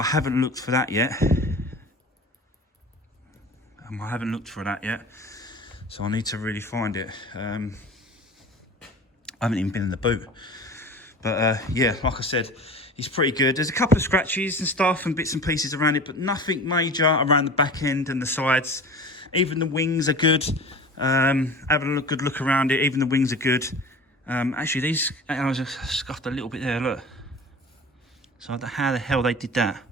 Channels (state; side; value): normal; both; correlation 0.37